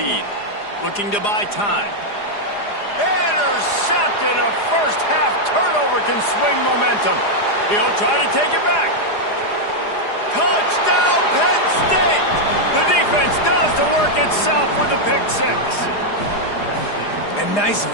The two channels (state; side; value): late; right; 4.9 ms